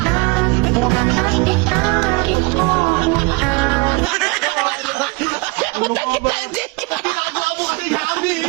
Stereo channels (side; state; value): left; quieter; 26.7 dB